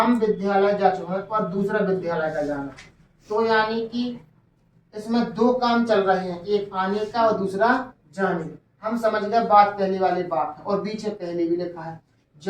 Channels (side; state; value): both; identical; correlation 1.00